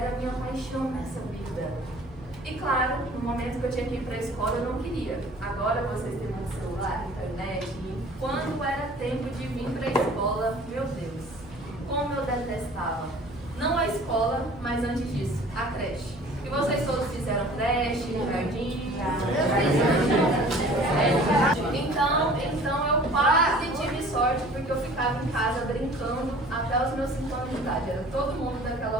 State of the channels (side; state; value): right; noise; hum, 21 dB below the sound